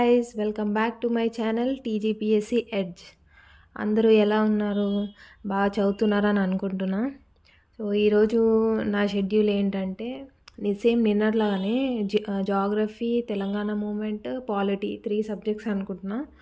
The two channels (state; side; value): identical; both; correlation 1.00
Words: welcome back to my channel TGPSC edge. అందరూ ఎలా ఉన్నారు? బాగా చదువుతున్నారని అనుకుంటున్నా. సో ఈరోజు నా షెడ్యూల్ ఏంటంటే సేమ్ నిన్నట్లాగానే geography, Telangana movement, polity 3 subjects అనుకుంటున్నా.